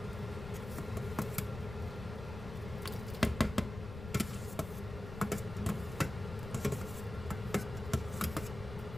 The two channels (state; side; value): noise; left; rumble, 9 dB below the sound